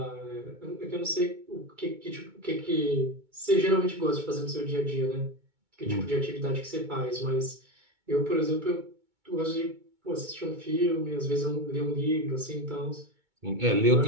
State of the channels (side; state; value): left; late; 2.2 ms